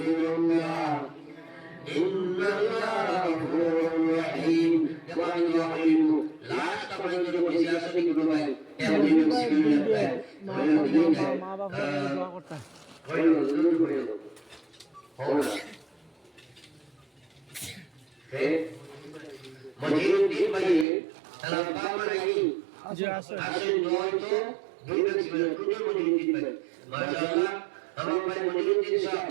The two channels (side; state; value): left; drops out; at 20.9 s